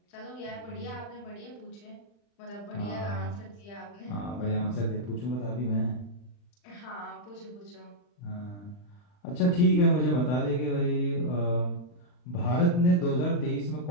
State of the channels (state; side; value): late; right; 40 ms